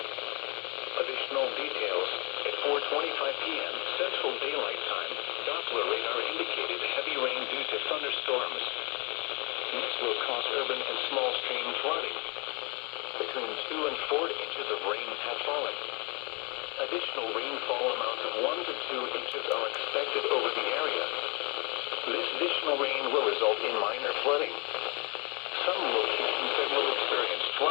Additional details. At 4:25 p.m. Central Daylight Time, Doppler radar indicated heavy rain due to thunderstorms. This will cause urban and small stream flooding. Between 2 and 4 inches of rain have fallen. Additional rainfall amounts of 1 to 2 inches are expected over the area. This additional rain will result in minor flooding. Some locations that will experience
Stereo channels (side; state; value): right; quieter; 30.5 dB